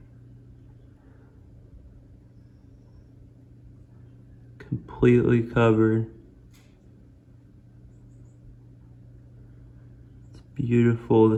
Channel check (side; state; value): both; identical; correlation 1.00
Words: Completely covered. It's beautiful.